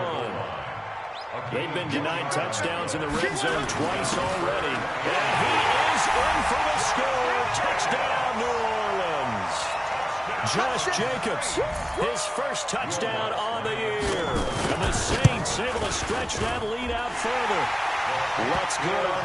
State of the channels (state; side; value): identical; both; correlation 1.00